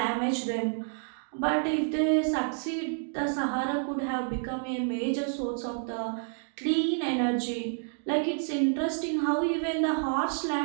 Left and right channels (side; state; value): left; silent; digital silence